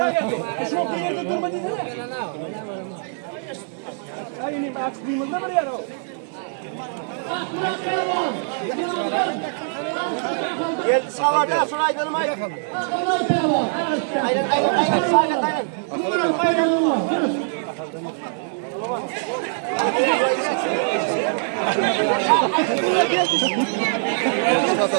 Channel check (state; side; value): silent; left; 58 dB below the other